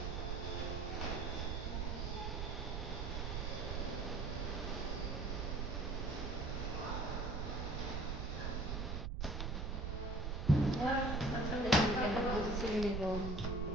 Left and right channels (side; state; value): right; noise; rumble, 1 dB below the sound